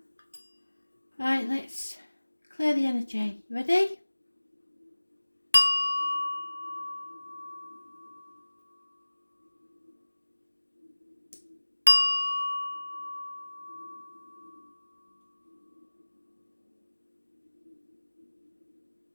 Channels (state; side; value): inverted; both; correlation -1.00